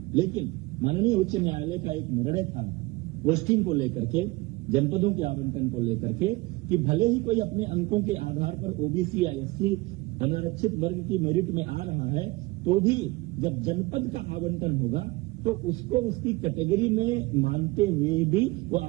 लेकिन माननीय उच्च न्यायालय का एक निर्णय था पोस्टिंग को लेकर के, जनपदों के आवंटन को लेकर के, कि भले ही कोई अपने अंकों के आधार पर ओबीसी या एससी अनारक्षित वर्ग की मेरिट में आ रहा है तो भी जब जनपद का आवंटन होगा तो उसको उसकी कैटेगरी में मानते हुए भी वो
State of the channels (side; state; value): left; quieter; 22.2 dB